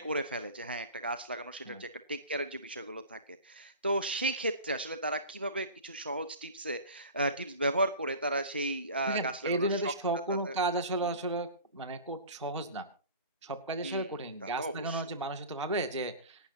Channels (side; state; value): both; inverted; correlation -0.37